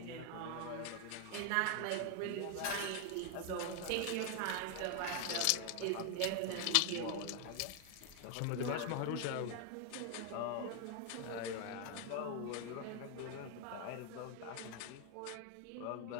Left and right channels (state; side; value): different; both; correlation 0.01